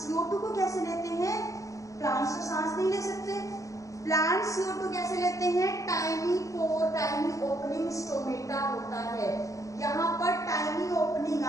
CO2 को कैसे लेते हैं? प्लांट्स तो सांस नहीं ले सकते। प्लांट्स CO2 कैसे लेते हैं? टाइनी पोर, टाइनी ओपनिंग स्टोमेटा होता है। यहाँ पर टाइनी ओपनिंग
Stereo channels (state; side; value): late; right; 0.16 ms